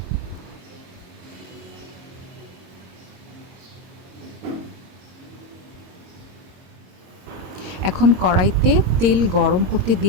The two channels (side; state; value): left; late; 22 ms